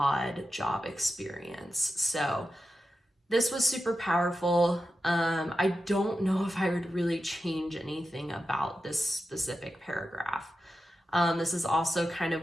job experience. So this was super powerful. I don't know if I would really change anything about this specific paragraph. This is also kind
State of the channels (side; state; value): both; normal; correlation 0.91